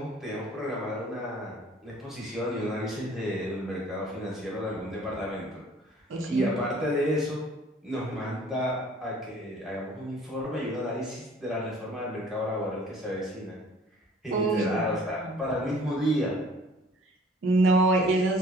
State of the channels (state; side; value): normal; both; correlation 0.53